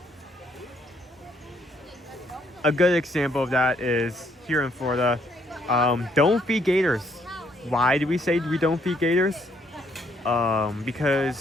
A good example of that is here in Florida. Don't feed gators. Why do we say we don't feed gators?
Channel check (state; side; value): normal; both; correlation 0.69